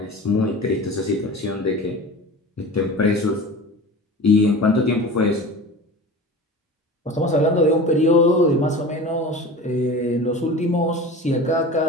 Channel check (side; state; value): both; normal; correlation 0.35